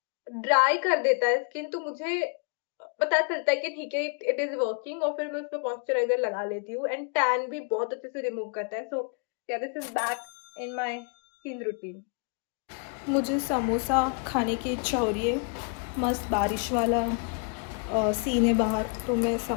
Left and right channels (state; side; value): quieter; right; 39.7 dB